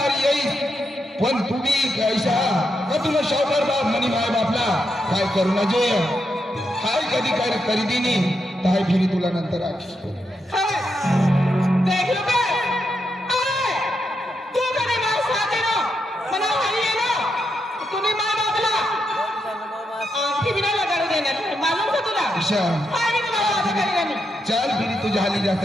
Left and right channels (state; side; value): normal; both; correlation 0.83